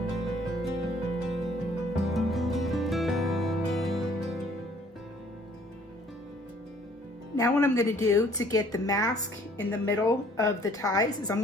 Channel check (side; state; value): both; normal; correlation 0.58